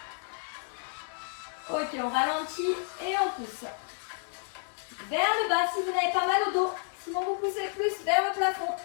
Ok, on ralentit et on pousse. Vers le bas si vous n'avez pas mal au dos. Sinon vous poussez plus vers le plafond.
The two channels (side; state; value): right; silent; 57 dB below the other